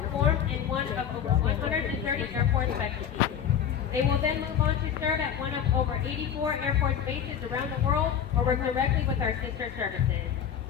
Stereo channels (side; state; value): right; quieter; 8.7 dB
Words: in one of over 130 airport specialties. They will then move on to serve at one of over 84 Air Force bases around the world or work directly with our sister services.